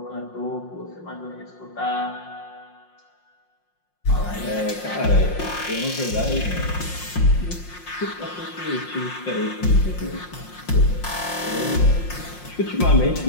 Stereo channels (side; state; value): right; late; 5.6 ms